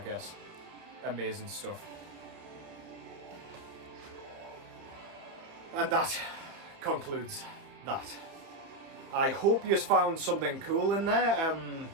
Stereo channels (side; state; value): left; late; 30 ms